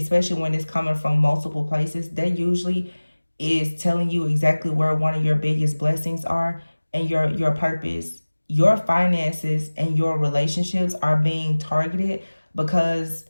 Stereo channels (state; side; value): inverted; both; correlation -1.00